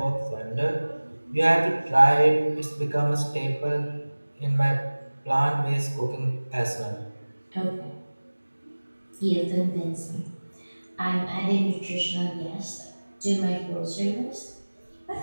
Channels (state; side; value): inverted; both; correlation -1.00